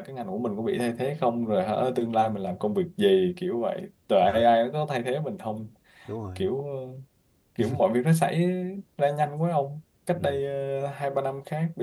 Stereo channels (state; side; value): identical; both; correlation 1.00